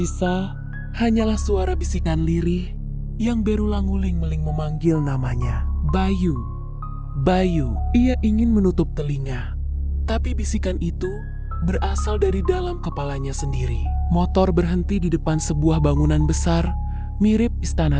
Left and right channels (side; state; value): both; identical; correlation 1.00